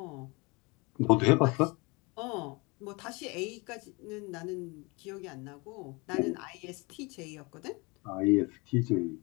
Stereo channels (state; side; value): quieter; right; 27.2 dB